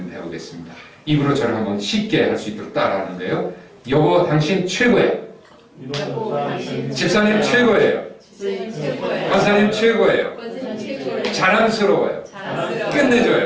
배우겠습니다. 입으로 저를 한번 쉽게 할 수 있도록 따라하는데요. 여보 당신 최고예요. 집사님 최고예요. 권사님 최고예요. 자랑스러워요.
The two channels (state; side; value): identical; both; correlation 1.00